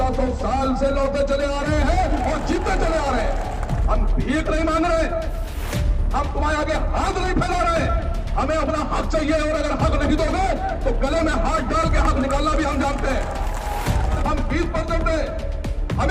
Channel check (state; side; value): identical; both; correlation 1.00